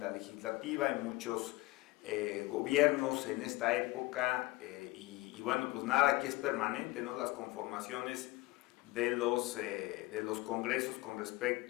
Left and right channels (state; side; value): quieter; right; 20.8 dB